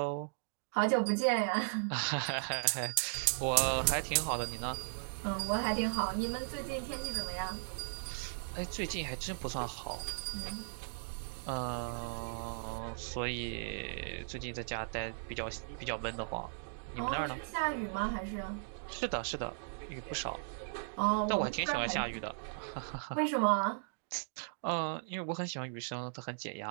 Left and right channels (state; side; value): silent; left; digital silence